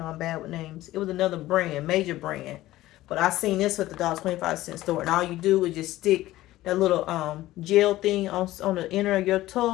I'm bad with names. It was another brand, major brand, but I seen this with the $1.25 store, and all you do is just stick that little gel thing on the inner of your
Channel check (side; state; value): right; quieter; 16.0 dB